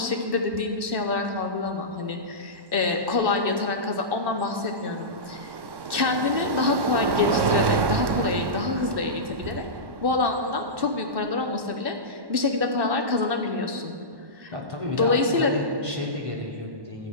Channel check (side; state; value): left; late; 1.1 ms